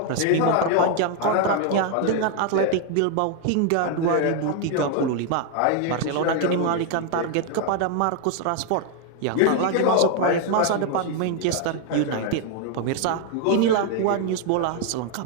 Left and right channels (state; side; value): different; both; correlation 0.00